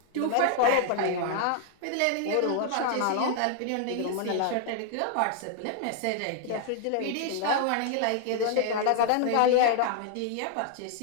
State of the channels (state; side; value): different; both; correlation 0.00